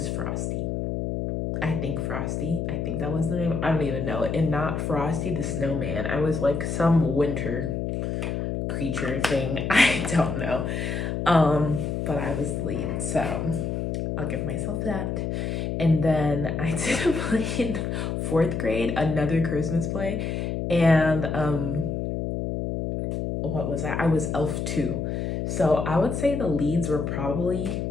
Frosty. I think Frosty. I think that was the name. I don't even know. And not Frosty the Snowman. I was like some winter creature thing. I don't know. But I was the lead. So I'll give myself that. And then I did a play in 4th grade, another Christmas play. And what was that? I was Elf 2. So I would say the leads were probably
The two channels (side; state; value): left; noise; hum, 2 dB below the sound